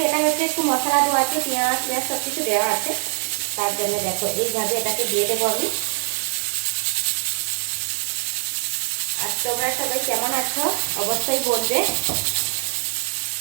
এটা হচ্ছে একটু মশলা দেওয়া আছে, পেঁয়াজ পেঁয়াজ সব কিছু দেওয়া আছে। তার জন্য দেখো এইভাবে এটাকে দিয়ে দেবো আমি। আর তোমরা সবাই কেমন আছো অবশ্যই বলবে।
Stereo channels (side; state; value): left; silent; digital silence